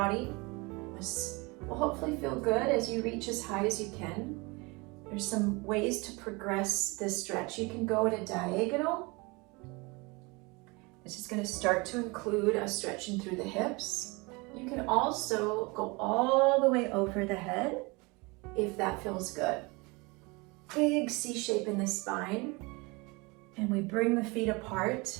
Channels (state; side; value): quieter; left; 26.5 dB